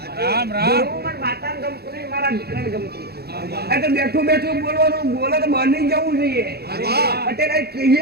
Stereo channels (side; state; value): left; late; 0.46 ms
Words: ધૂળું પણ માતાને ગમતું નહીં મારા દીકરાને ગમતું. આ તો બેઠું બેઠું બોલવાનું બોલો તો બની જવું જોઈએ. પટેલ